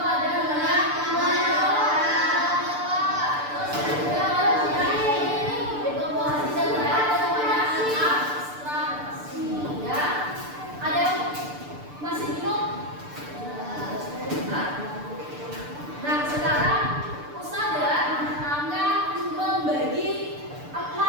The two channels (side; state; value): left; late; 6.8 ms